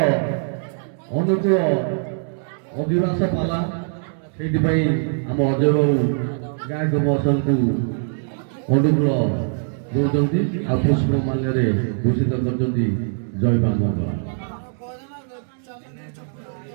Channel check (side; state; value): left; silent; 64 dB below the other